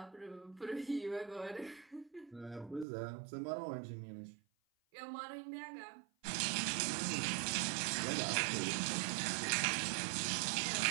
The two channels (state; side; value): drops out; left; at 2.9 s